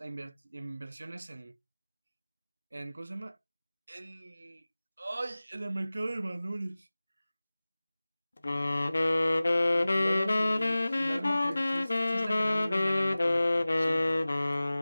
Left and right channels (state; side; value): inverted; both; correlation -0.98